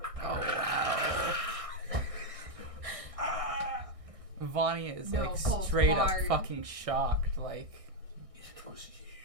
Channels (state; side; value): late; left; 1.6 ms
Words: Oh, wow. Vanya is No, like hold straight hard. up fucking shocked. Like, It was